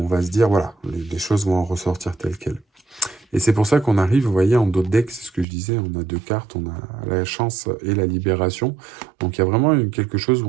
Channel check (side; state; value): left; drops out; at 5.5 s